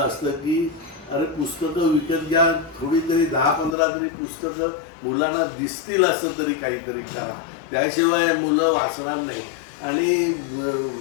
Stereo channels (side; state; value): right; drops out; at 3.8 s